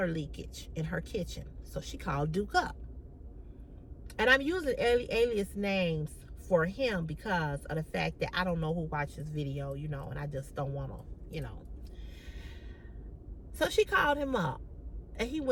leakage in her kitchen, so she called Duke up. And I'm using alias names for him because of the fact that I don't know who watched this video, you know, and I just don't want to, you know. So she called him up and he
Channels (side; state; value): both; identical; correlation 1.00